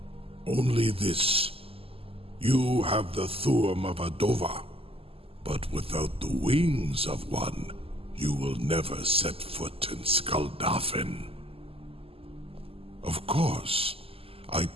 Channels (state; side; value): late; left; 0.28 ms